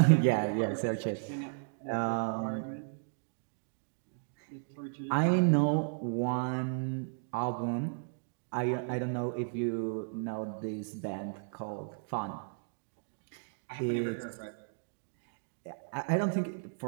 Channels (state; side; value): silent; left; digital silence